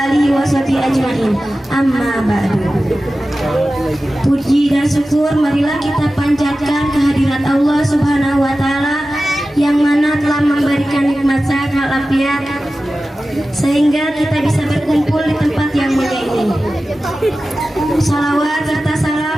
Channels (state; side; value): normal; both; correlation 0.95